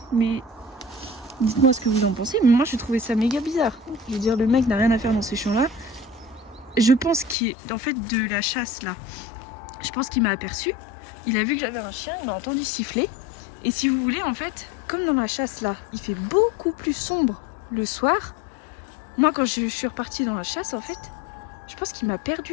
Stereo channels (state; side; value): drops out; right; at 7.4 s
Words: mais dites-moi ce que vous en pensez. Mais moi, je trouvais ça méga bizarre. Je veux dire, le mec n'a rien à faire dans ces champs-là. Je pense qu'il est en fait de la chasse là. Je pense qu'il m'a aperçu. Il a vu que j'avais un chien, il m'a entendu siffler. Et si vous voulez, en fait, comme dans la chasse là, il fait beaucoup plus sombre le soir. Moi, quand je suis repartie dans la chasse, en fait, je pense qu'il m'a